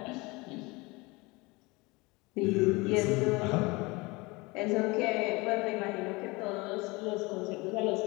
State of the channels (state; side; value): quieter; right; 24.5 dB